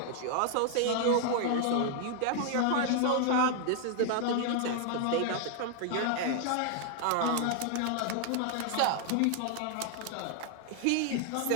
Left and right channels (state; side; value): different; both; correlation 0.00